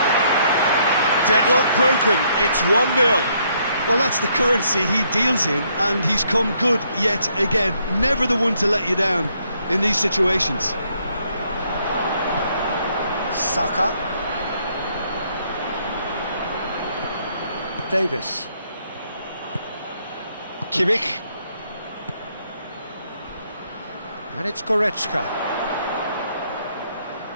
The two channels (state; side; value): inverted; both; correlation -0.71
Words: Deadlock broken, it's 1-0. Well, that's the currency he deals in, and he's come good yet again. Never the one to let you down in these situations. Saka. Davis. Kimmich. And it's Goretzka.